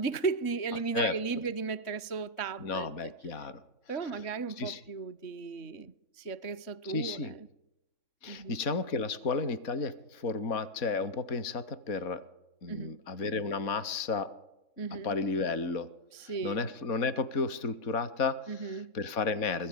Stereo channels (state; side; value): late; right; 3.6 ms